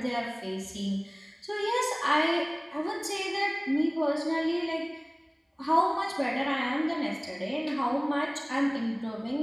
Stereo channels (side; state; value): both; identical; correlation 1.00